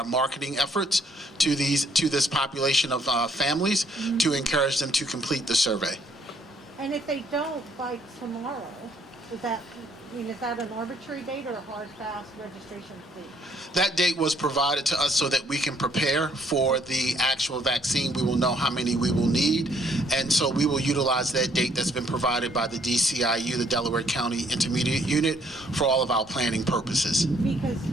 marketing efforts to this population of families to encourage them to complete the survey. And if they don't by tomorrow, is that an arbitrary date or a hard, fast registration date? That date was provided to us so that we can prepare for the actual vaccine. We will know how many we will need, and so we will utilize that date that's been provided by the DCIU, the Delaware County Intermediate Unit, for all of our planning purposes. Because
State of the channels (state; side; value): normal; both; correlation 0.66